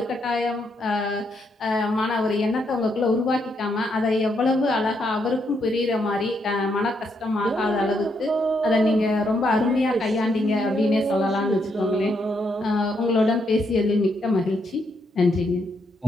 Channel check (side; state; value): both; normal; correlation 0.77